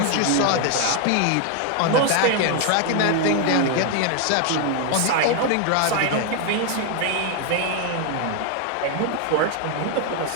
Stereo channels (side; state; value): both; different; correlation 0.01